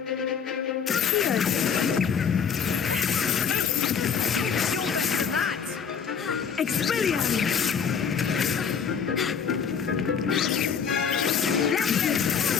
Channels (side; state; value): right; quieter; 6.9 dB